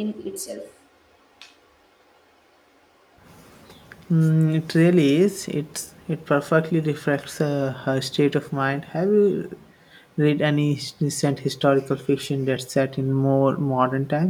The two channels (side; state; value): both; identical; correlation 1.00